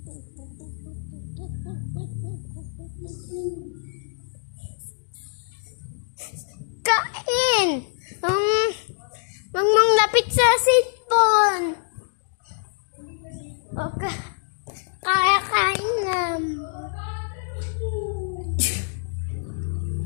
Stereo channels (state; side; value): silent; right; digital silence